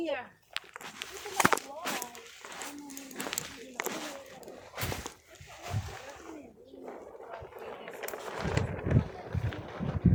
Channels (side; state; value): both; identical; correlation 1.00